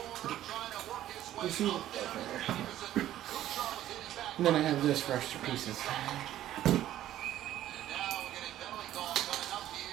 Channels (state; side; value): quieter; left; 12.9 dB